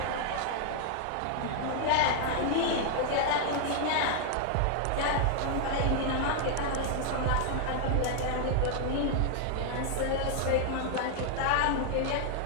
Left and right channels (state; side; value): different; both; correlation 0.00